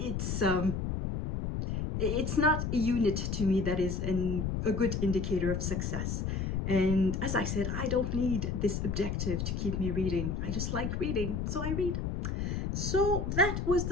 not a unit to me that is a good indicator of success. And as I said, I don't need this objective to keep me reading. I just like reading, so I read. So that was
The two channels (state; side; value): noise; left; rumble, 1 dB below the sound